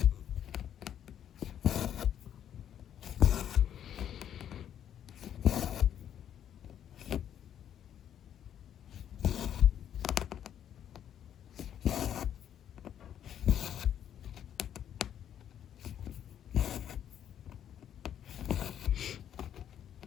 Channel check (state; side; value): quieter; right; 9.9 dB